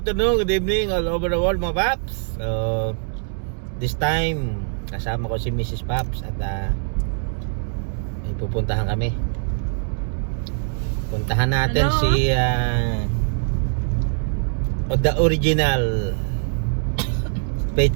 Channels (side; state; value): left; silent; digital silence